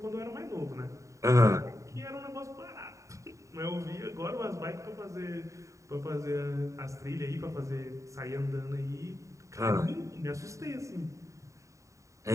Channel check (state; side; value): late; left; 0.15 ms